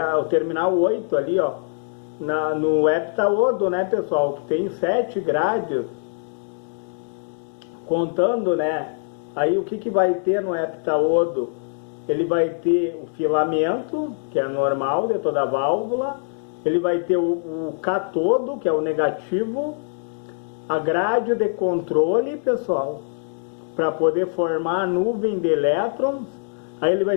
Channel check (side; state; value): right; silent; digital silence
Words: o terminal 8 ali, no heptaodo, né, pessoal, que tem 7 grades, contando, né? Aí o que vai ter no heptaodo? Ele vai ter o filamento, que é normal de toda a válvula, ele vai ter o catodo, que é o negativo, a grade de controle, pessoal, para poder formar a nuvem de elétrons. Aí ele vai